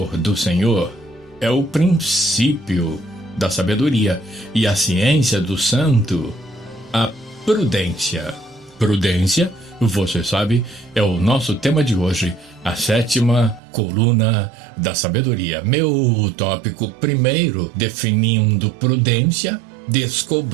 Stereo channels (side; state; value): left; drops out; at 13.6 s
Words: do Senhor é o princípio da sabedoria e a ciência do santo, a prudência. Prudência, você sabe, é o nosso tema de hoje, a sétima coluna da sabedoria. Meu tópico primeiro, definindo prudência,